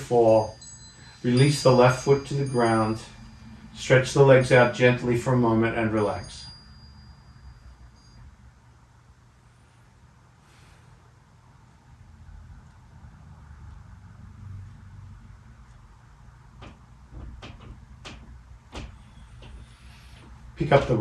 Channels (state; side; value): identical; both; correlation 1.00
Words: Release the left foot to the ground. Stretch the legs out gently for a moment and relax. Pick up the